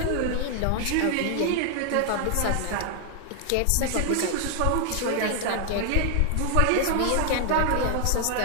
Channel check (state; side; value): different; both; correlation 0.00